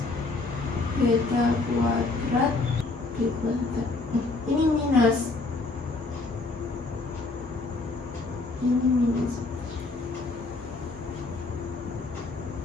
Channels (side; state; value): right; quieter; 3.5 dB